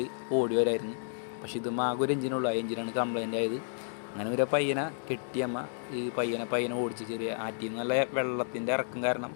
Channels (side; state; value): right; silent; digital silence